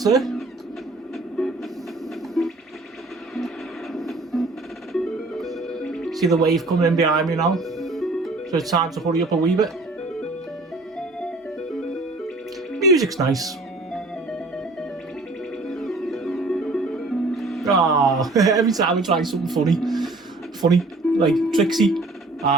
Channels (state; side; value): quieter; left; 3.1 dB